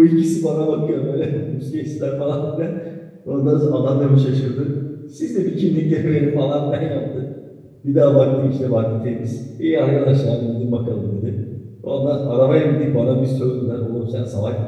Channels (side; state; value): both; identical; correlation 1.00